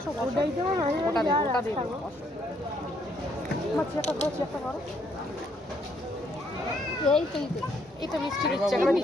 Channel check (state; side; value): normal; both; correlation 0.70